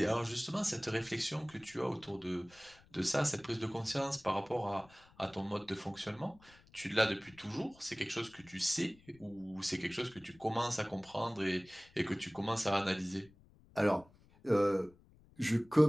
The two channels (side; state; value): left; noise; rumble, 27 dB below the sound